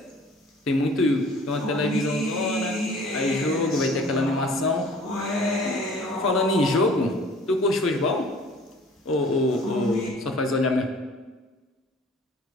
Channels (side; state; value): both; normal; correlation 0.50